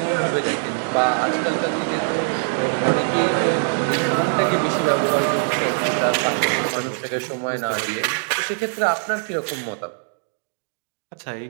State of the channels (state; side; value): silent; left; digital silence